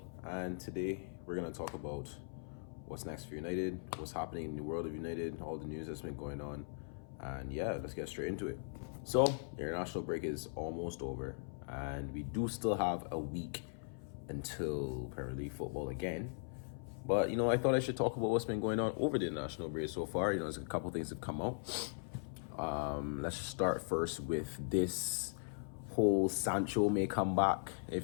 and today we're going to talk about what's next for United, what's happening in the world of United, all the news that's been going on, and yeah, let's get straight into it. So, the international break is almost over, and we do still have a week until Premier League football again. But, I thought I should talk about what's been going on over the international break so far. There's a couple things that come out. Let's start first with this whole Sancho may come back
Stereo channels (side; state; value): right; silent; 52 dB below the other